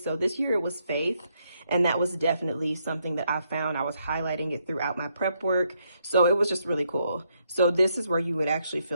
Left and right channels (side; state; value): both; inverted; correlation -0.77